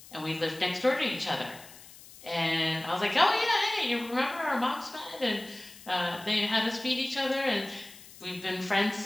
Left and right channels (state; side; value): noise; left; hiss, 19 dB below the sound